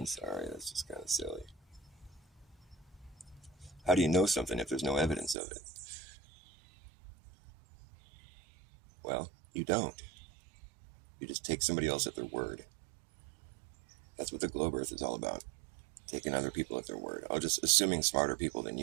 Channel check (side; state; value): left; drops out; at 5.4 s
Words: sorry, that's just kind of silly. How do you know something if there's no evidence of it? Well, you don't. You just take somebody else at their word. That's what the globe earth is all about. Taking other people at their word. Oh, just assuming smarter people than